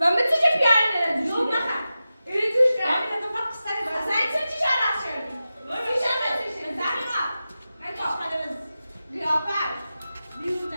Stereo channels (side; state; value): both; inverted; correlation -0.93